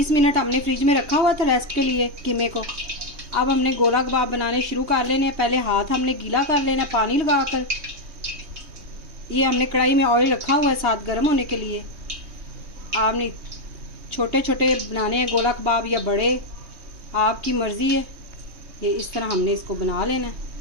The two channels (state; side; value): late; left; 3.2 ms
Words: मिनट हमने फ्रिज में रखा हुआ था रेस्ट के लिए कीमे को। अब हमने गोला कबाब बनाने शुरू कर लेने। पहले हाथ हमने गीला कर लेना पानी लगाकर। ये हमने कढ़ाई में ऑयल रखा हुआ है साथ गर्म होने के लिए। आपने छोटे छोटे बनाने हैं गोला कबाब या बड़े, आपकी मर्ज़ी है। ये इस तरह हमने इसको बना लेना है।